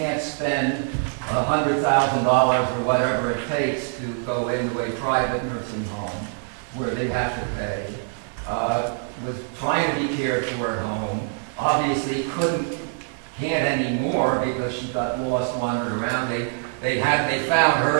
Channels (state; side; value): silent; left; 63 dB below the other